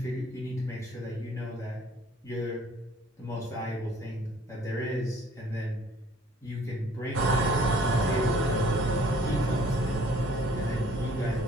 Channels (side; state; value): both; normal; correlation 0.56